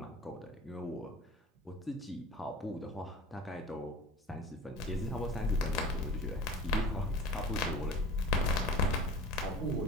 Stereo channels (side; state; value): both; normal; correlation 0.40